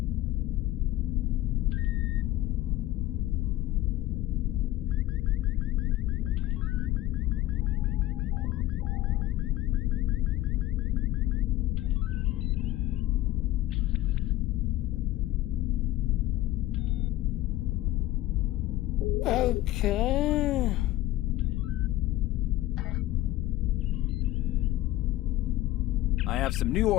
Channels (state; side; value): quieter; right; 15.9 dB